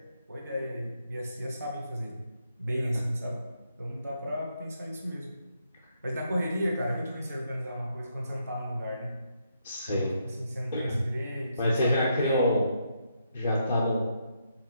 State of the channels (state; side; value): inverted; both; correlation -0.79